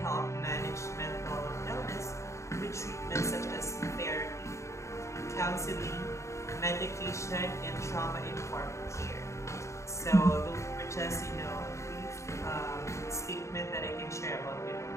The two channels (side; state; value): right; late; 0.14 ms